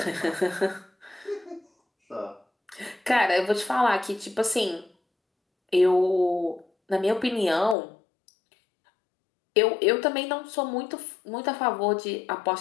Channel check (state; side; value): drops out; right; at 7.8 s